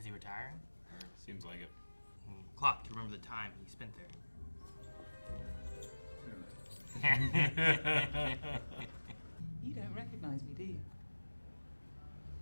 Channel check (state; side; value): inverted; both; correlation -1.00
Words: he retiring? Seems like it. Clock to remember the time he spent there. You don't recognize me, do you?